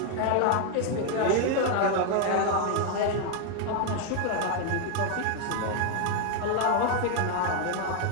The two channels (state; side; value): different; both; correlation 0.01